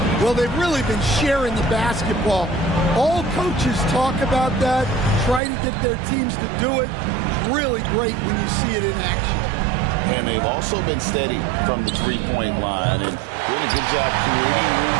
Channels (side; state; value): left; drops out; at 5.4 s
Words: Well, they've really been sharing the basketball. All coaches talk about that, try to get their teams to do it. It's really great when you see it in action. And they've also been steady from the three-point line and doing a good job creating room